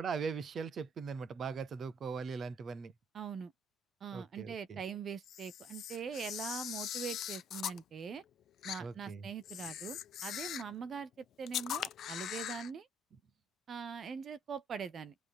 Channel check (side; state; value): both; normal; correlation 0.65